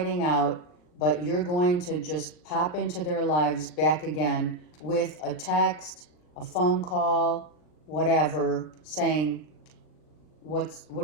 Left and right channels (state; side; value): late; right; 39 ms